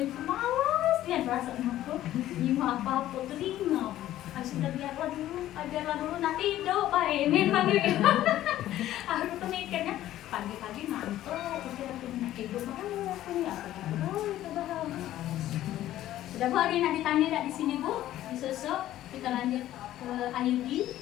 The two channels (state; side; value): quieter; right; 13.5 dB